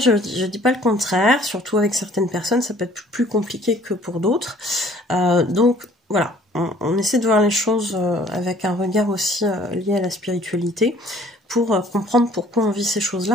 dis pas le contraire, surtout avec certaines personnes, ça peut être plus compliqué que pour d'autres. Donc voilà, on essaie de voir les choses avec un regard aussi lié à la spiritualité, pour comprendre pourquoi on vit ces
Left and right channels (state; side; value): normal; both; correlation 0.56